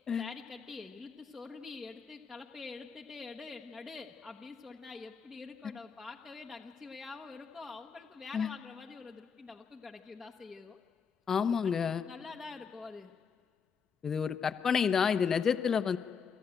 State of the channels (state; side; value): quieter; right; 6.3 dB